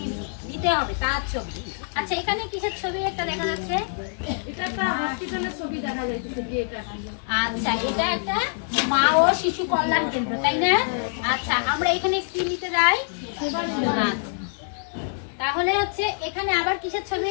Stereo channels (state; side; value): silent; right; 62 dB below the other